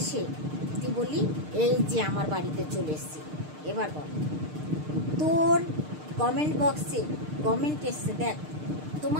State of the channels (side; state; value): left; late; 6.6 ms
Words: তুই বললি এই যে আমার বাড়িতে চলে এসছি। এবার বল, তোর কমেন্ট বক্সে কমেন্ট এসছে, দেখ